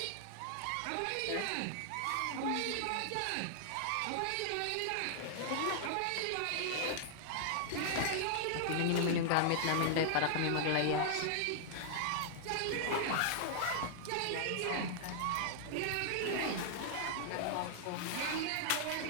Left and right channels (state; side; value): different; both; correlation 0.00